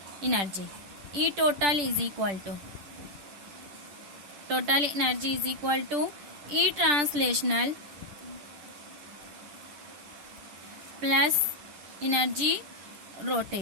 energy, e total is equal to, total energy is equal to e translational plus energy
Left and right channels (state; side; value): late; left; 11 ms